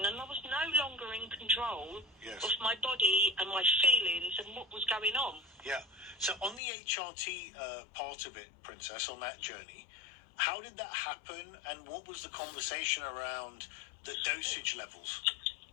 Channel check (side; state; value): right; drops out; at 6.6 s